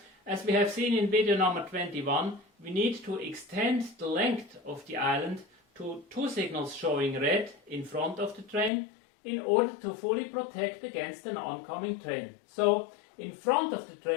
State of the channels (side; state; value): right; drops out; at 8.7 s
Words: as we have seen in video number 21, we need to extend the length of the island to 2 signals showing red in front of the train in order to fully protect against an oncoming train. So, in front of the